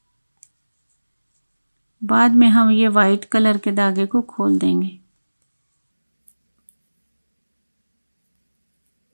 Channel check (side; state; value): both; inverted; correlation -1.00